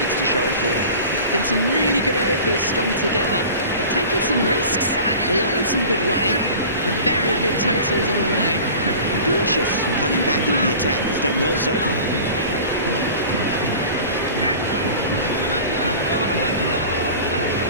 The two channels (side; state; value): both; inverted; correlation -0.39